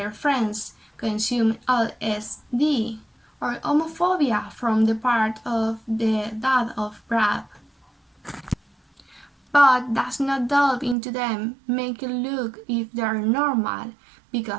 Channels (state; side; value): drops out; left; at 11.0 s